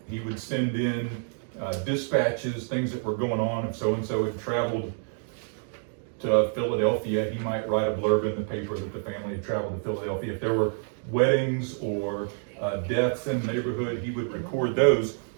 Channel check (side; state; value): left; silent; 59 dB below the other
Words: send in dispatches, things that were going on. If so-and-so had traveled to Philadelphia, he might write a blurb in the paper that the family had traveled to Philadelphia. If there were weddings or deaths in the neighborhood, he would record those.